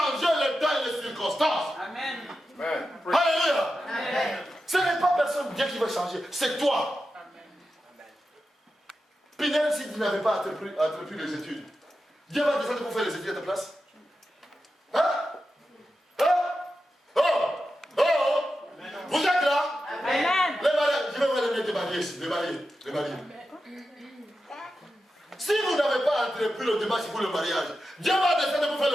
le temps et les circonstances. Amen. Amen. Alléluia. Amen. Ce n'est pas personne Dieu qui va changer, c'est toi. Pinel, si tu n'avais pas entrepris les études, Dieu va descendre pour faire les études à ta place. Hein? Hein? Oh! Oh! Vous êtes là? Amen. Les mariés, je vais vous les mettre mariés ici, les mariés. Si vous n'avez pas entrepris le démarche pour le mariage, Dieu va descendre pour faire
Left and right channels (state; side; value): normal; both; correlation 0.90